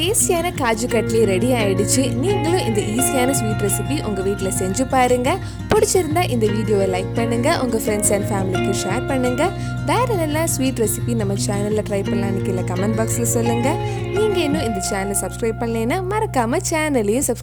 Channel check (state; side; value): identical; both; correlation 1.00